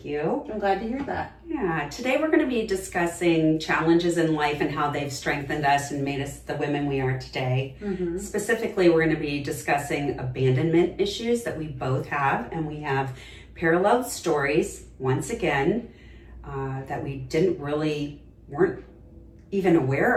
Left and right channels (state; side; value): identical; both; correlation 1.00